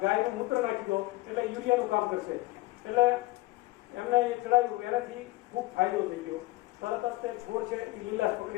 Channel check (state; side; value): quieter; right; 20.1 dB